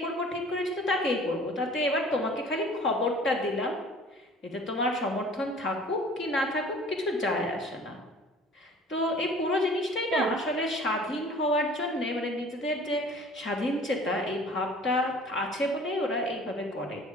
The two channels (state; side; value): normal; both; correlation 0.48